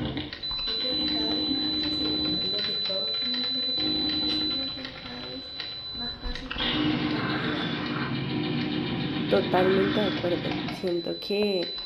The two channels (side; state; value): both; identical; correlation 1.00